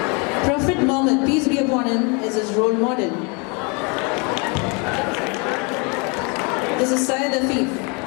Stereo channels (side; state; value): right; quieter; 32.4 dB